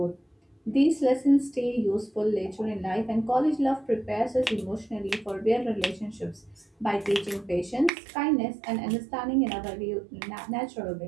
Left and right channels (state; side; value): drops out; left; at 7.9 s